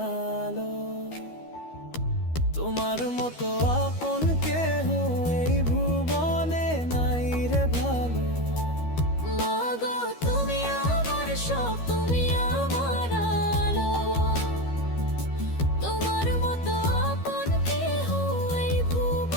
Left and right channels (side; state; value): right; late; 12 ms